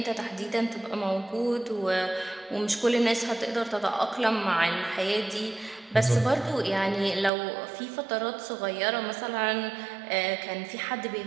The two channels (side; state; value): left; drops out; at 7.3 s